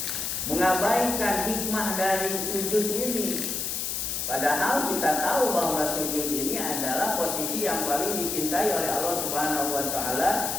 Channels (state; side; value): noise; left; hiss, 2 dB below the sound